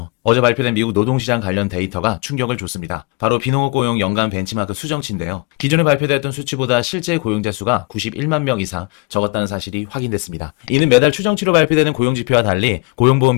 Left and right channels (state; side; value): quieter; right; 28.8 dB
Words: 어제 발표된 미국 노동시장 관련 데이터가 충격을 줬습니다. 바로 비농업 고용 연간 벤치마크 수정치인데요. 기존에 발표되었던 수치보다 실제 고용자 수가 91만 명 이상 적었다는 사실이 확인됐습니다. 이는 매달 추정치로 발표되는 고용지표와 달리 고용보험